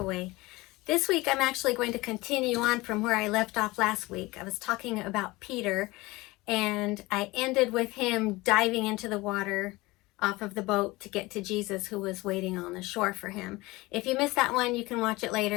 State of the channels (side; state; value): right; quieter; 21.3 dB